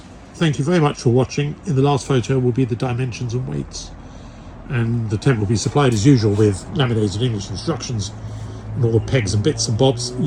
Thank you very much for watching. In the last photo will be the dimensions and weights, and the tent will be supplied as usual with laminated English instructions and all the pegs and bits and bobs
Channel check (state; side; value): identical; both; correlation 1.00